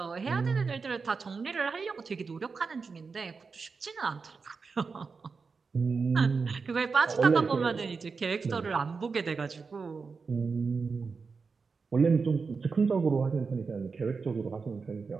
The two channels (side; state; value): left; quieter; 4.9 dB